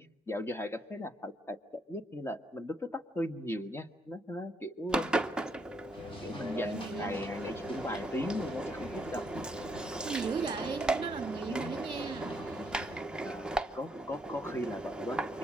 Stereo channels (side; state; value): both; normal; correlation 0.74